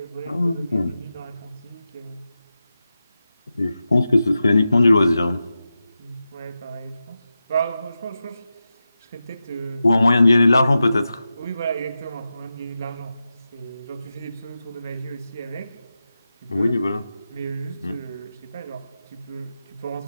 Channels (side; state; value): both; inverted; correlation -0.92